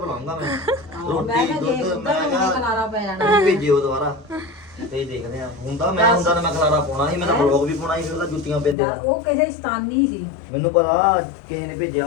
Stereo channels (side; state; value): right; drops out; at 8.8 s